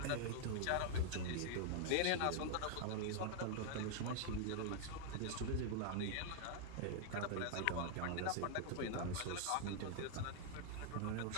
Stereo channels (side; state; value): both; different; correlation 0.00